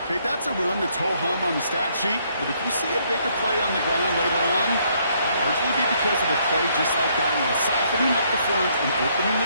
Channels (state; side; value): inverted; both; correlation -0.69